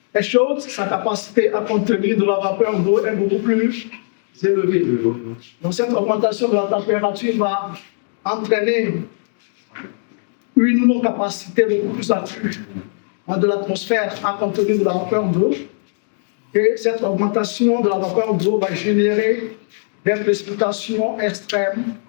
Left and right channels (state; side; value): silent; right; digital silence